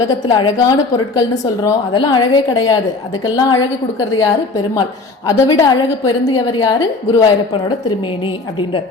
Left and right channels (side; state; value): right; quieter; 3.6 dB